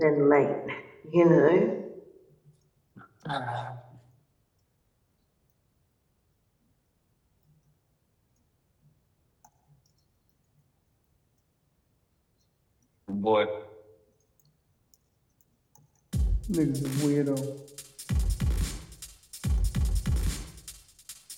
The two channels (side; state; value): both; identical; correlation 1.00